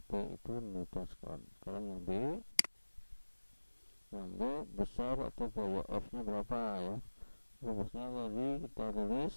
P itu Newton sekon. Sekarang yang B, besar atau gaya F nya berapa ya. Rumusnya tadi kita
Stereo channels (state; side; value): inverted; both; correlation -1.00